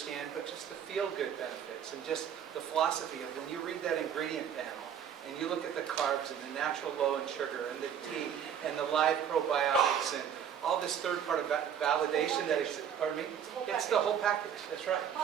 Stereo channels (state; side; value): quieter; left; 8.6 dB